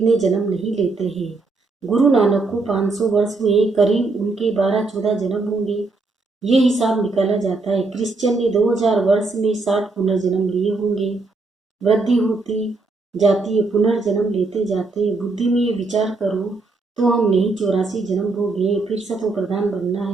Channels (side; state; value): left; quieter; 3.6 dB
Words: जन्म नहीं लेते हैं। गुरु नानक को 500 वर्ष हुए, करीब उनके 12-14 जन्म होंगे। ये हिसाब निकाला जाता है। क्रिश्चियन ने 2000 वर्ष में 60 पुनर्जन्म लिए होंगे। वृद्धि होती जाती है, पुनर्जन्म लेते जाते हैं। बुद्धि में ये विचार करो तो हम नहीं 84 जन्म हो गए। फिर सतो प्रधान बनना